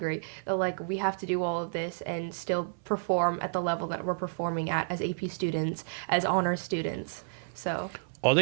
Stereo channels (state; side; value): silent; left; 57 dB below the other